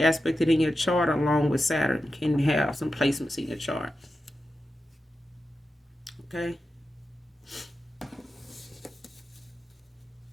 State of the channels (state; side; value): normal; both; correlation 0.91